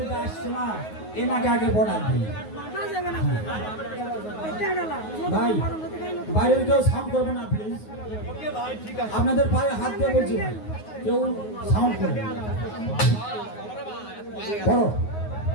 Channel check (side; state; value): right; late; 9.5 ms